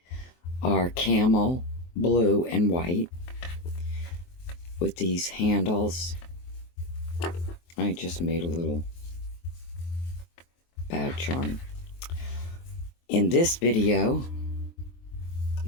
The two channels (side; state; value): right; late; 23 ms